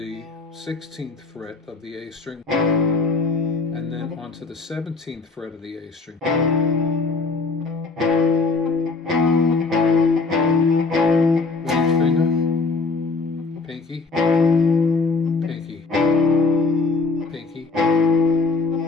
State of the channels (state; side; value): quieter; right; 4.0 dB